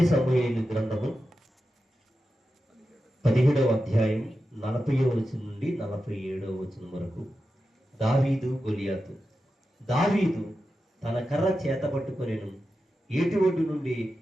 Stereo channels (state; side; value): normal; both; correlation 0.91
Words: సమూయేలు గ్రంథము 17వ అధ్యాయం 40వ వచనం నుండి 47వ వచనం వరకు. దావీదు గొలియాతు. దావీదు తన కర్ర చేత పట్టుకొనెను, ఏటి ఒడ్డు నుండి